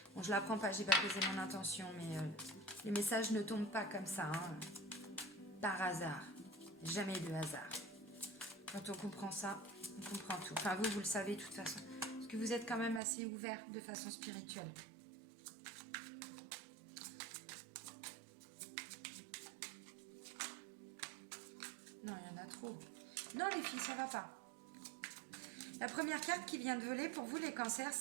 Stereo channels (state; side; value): drops out; left; at 13.0 s